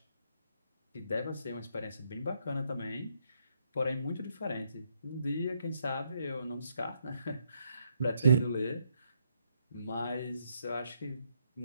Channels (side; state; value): both; inverted; correlation -0.76